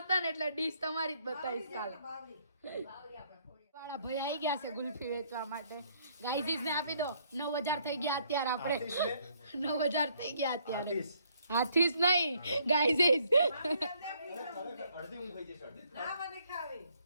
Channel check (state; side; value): inverted; both; correlation -0.68